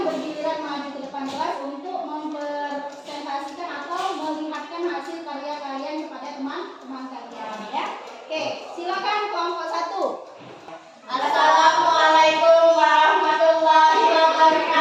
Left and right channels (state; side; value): identical; both; correlation 1.00